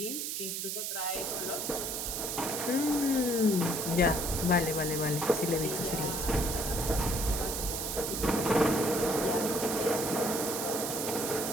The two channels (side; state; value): right; noise; hiss, 3 dB below the sound